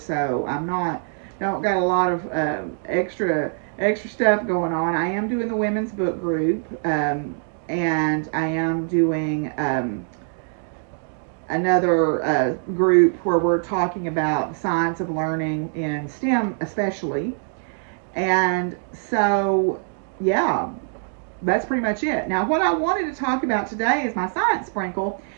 don't got a lot of extra stuff going on. I am doing the women's book group, and I am doing another group where we're talking about science of learning in STEM especially. And so, yeah, that's pretty much it. Now, what I wanted to talk about today is my science sprinkle.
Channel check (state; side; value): silent; left; 63 dB below the other